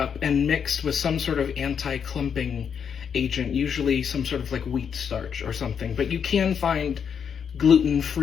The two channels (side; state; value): right; quieter; 7.3 dB